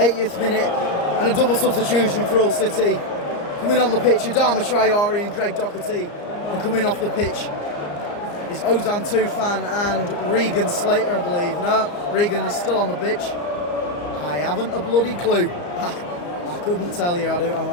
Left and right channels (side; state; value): right; late; 34 ms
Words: minute and a double substitution for Hull City. Coming on the pitch, Adama Traore and Greg Doherty. And coming off the pitch is Ozan Tufan and Regan Slater, I believe. No, Regan is still on the pitch. I haven't a bloody clue. I couldn't tell you, I